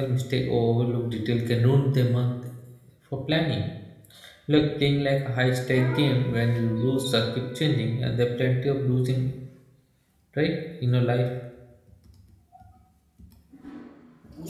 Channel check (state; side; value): identical; both; correlation 1.00